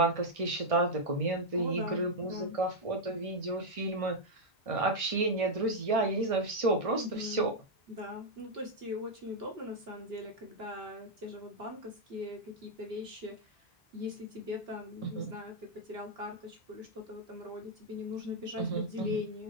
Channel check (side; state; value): both; normal; correlation -0.02